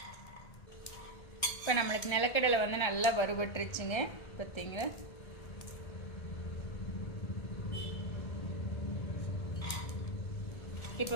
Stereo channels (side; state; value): right; late; 1.3 ms